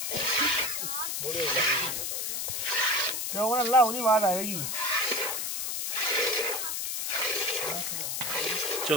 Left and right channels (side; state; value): left; noise; hiss, 1 dB below the sound